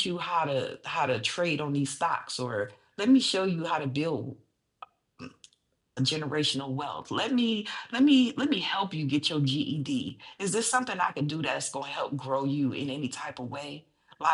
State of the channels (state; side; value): identical; both; correlation 1.00